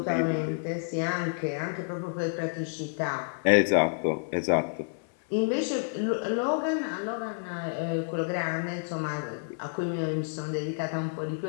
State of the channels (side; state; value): right; silent; 58 dB below the other